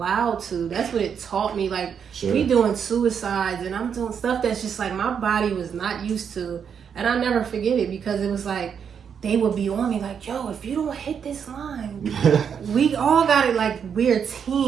to. That's what it taught me. Like we doing suicides, and I'm doing stuff that's just like my body was not used to, and I'll never forget it, because it was like they would be on me like, yo, if you don't hit this line, we all got it. Like we're a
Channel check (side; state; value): left; quieter; 7.3 dB